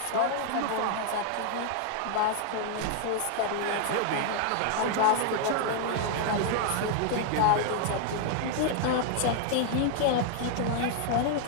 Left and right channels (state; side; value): different; both; correlation 0.00